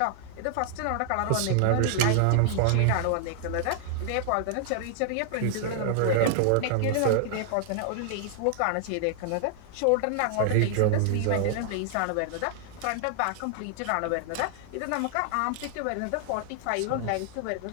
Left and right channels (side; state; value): both; different; correlation 0.00